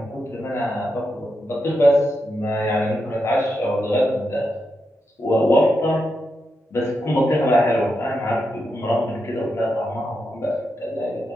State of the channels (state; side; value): normal; both; correlation 0.86